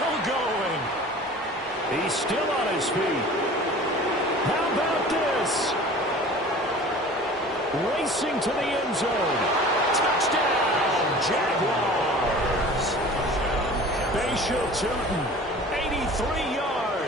going. He's still on his feet. How about this? Racing to the end zone. Touchdown, Jaguars. Bashal Tootin, 83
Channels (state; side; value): normal; both; correlation 0.42